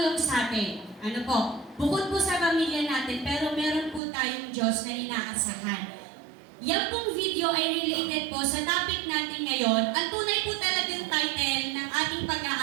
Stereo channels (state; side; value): drops out; left; at 4.0 s